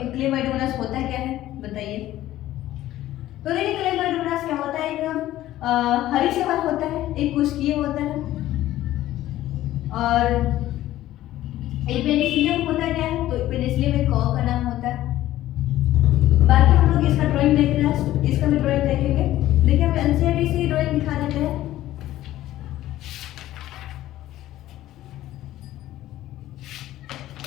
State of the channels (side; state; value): right; quieter; 14.4 dB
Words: होता क्या है। बताइए। तो देखिए क्लेमाइडोमोनास क्या होता है, एक हरी शैवाल होता है, एक कुष्कीय होता है, और एक पेनिसिलियम होता क्या है, तो पेनिसिलियम एक कॉ का नाम होता है। बाकी हम लोग इसका ड्राइंग देख रहे हैं, इसका भी ड्राइंग देखेंगे। देखिए हम एनसीईआरटी से ड्राइंग दिखा देते हैं।